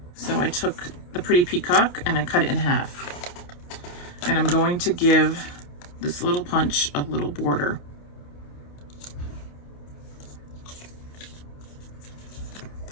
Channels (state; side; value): late; right; 28 ms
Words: So I took the Pretty Peacock and I cut it in half. And I'm going to give this little punch a little border.